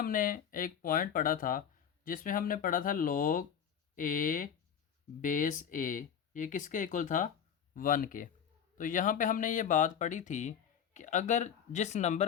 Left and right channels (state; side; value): quieter; right; 8.3 dB